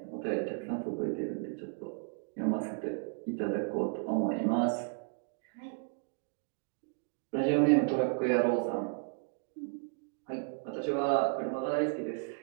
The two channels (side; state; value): left; silent; 55 dB below the other